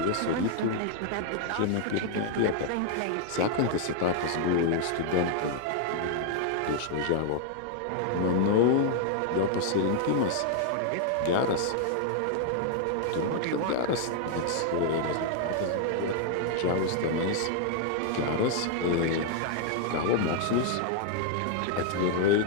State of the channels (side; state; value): both; different; correlation 0.00